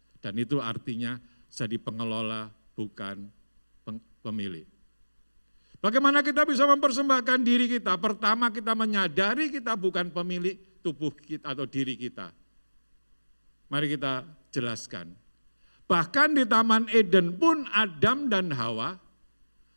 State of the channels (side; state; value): both; inverted; correlation -1.00